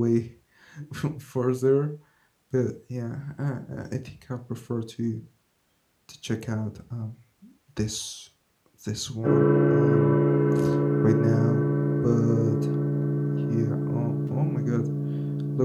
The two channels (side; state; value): both; identical; correlation 1.00